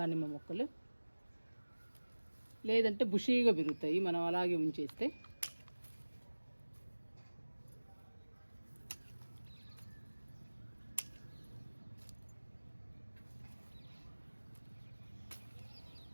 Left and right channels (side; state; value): both; inverted; correlation -1.00